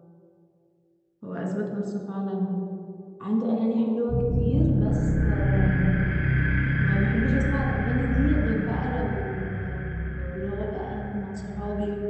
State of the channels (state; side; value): identical; both; correlation 1.00